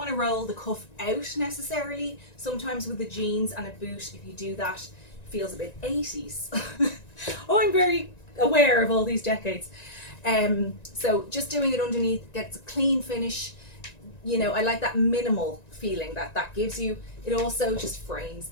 to roll the cuff out necessarily. Sometimes with the jeans and a boot, if you do that, it feels a bit 80s. Oh, I'm very aware of all these decades. So just doing it underneath gets a clean finish. I like that minimal feeling that gives you. It also just frames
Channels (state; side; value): late; right; 1.9 ms